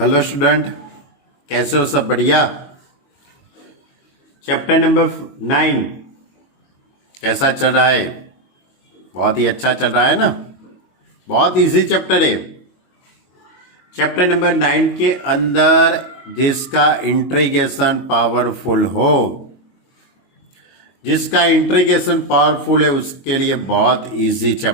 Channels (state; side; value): late; right; 22 ms